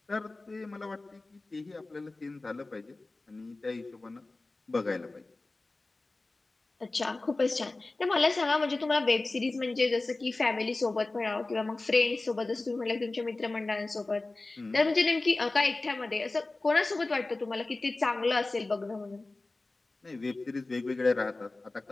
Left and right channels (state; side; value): quieter; right; 3.2 dB